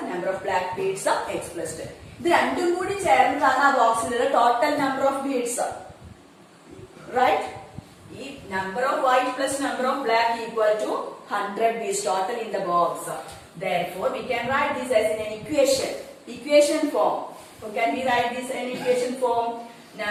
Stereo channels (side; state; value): both; identical; correlation 1.00